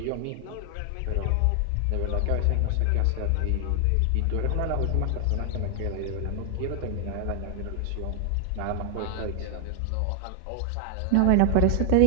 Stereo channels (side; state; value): both; different; correlation 0.00